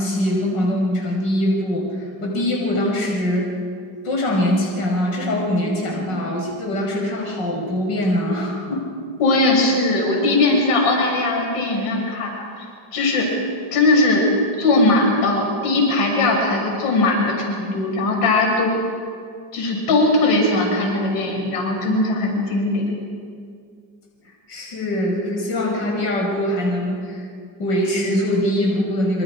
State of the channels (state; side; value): late; right; 5.0 ms